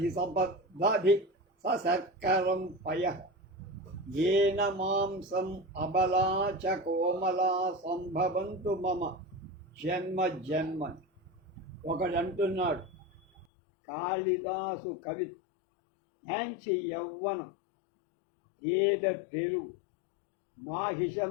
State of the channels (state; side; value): drops out; right; at 13.5 s